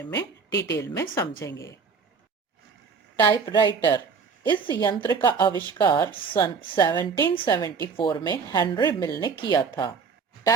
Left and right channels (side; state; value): left; quieter; 5.6 dB